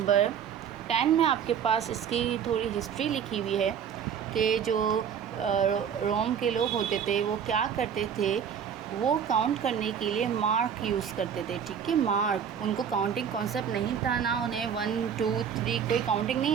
10 में आपके पास इसकी थोड़ी हिस्ट्री लिखी हुई है कि जो रोम के लोग होते थे वो क्या करते थे, वो काउंट करने के लिए मार्क यूज़ करते थे। ठीक है, मार्क, उनको काउंटिंग कॉन्सेप्ट नहीं था ना, उन्हें 1 2 3 कोई काउंटिंग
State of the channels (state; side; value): quieter; left; 8.0 dB